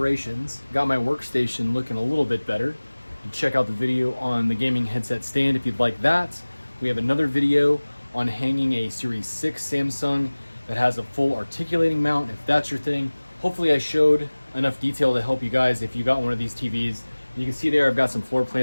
got my workstation looking a little bit better. You can check out the video on the gaming headset stand if you'd like that. We have another video on hanging a Series 6 Samsung that has a full articulating mount, if that's your thing. Hopefully I showed enough detail to help you guys if you got one of these TVs. You can see there I've got some floor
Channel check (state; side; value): inverted; both; correlation -1.00